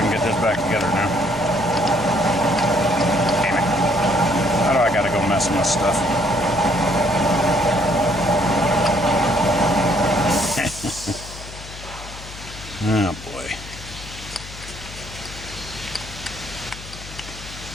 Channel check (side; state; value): left; noise; hum, 14 dB below the sound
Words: can get this back together now. Damn it. How do I gotta go messing with stuff? Oh boy.